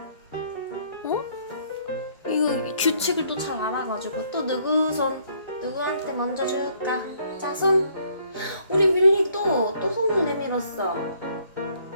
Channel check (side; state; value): both; inverted; correlation -0.65